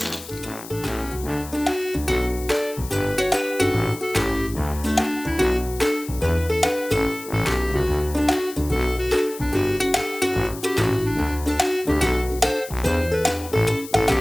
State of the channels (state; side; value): noise; left; hiss, 15 dB below the sound